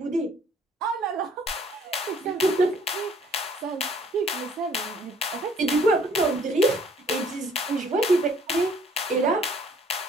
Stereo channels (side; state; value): both; normal; correlation 0.59